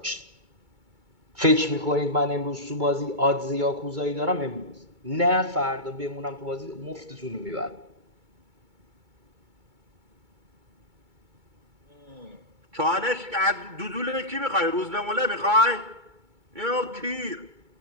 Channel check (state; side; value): late; left; 2.2 ms